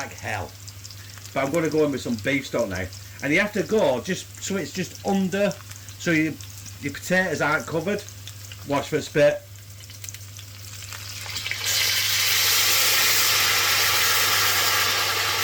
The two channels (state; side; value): identical; both; correlation 1.00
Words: hell. But I'm going to go in with some beef stock now. And you have to go just so it's just under, so your potatoes aren't covered. Watch for it spit.